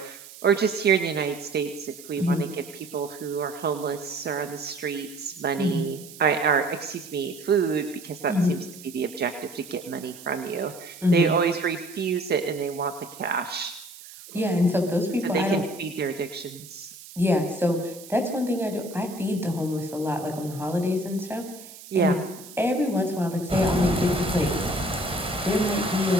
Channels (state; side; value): noise; right; hiss, 17 dB below the sound